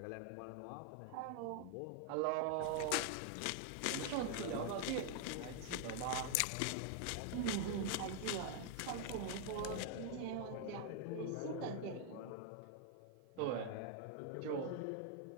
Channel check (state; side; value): different; both; correlation 0.00